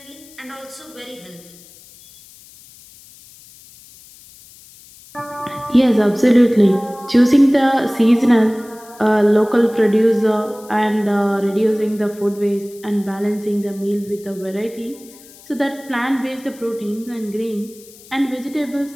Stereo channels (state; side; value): noise; left; hiss, 23 dB below the sound